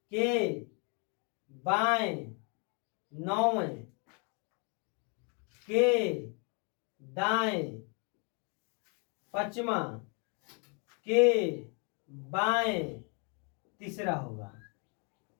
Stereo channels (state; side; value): quieter; right; 36.0 dB